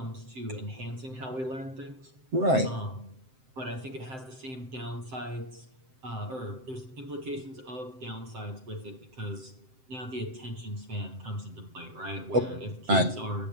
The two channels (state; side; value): late; left; 7.7 ms